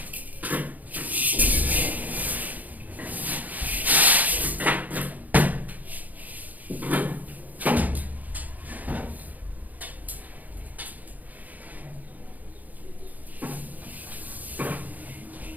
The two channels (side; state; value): left; late; 0.080 ms